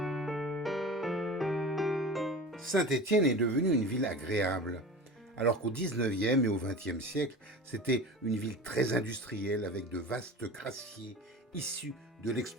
Saint-Étienne est devenue une ville agréable, alors qu'au 19e et au 20e siècle, c'était une ville très industrielle avec de vastes grassiers issus de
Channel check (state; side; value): normal; both; correlation 0.34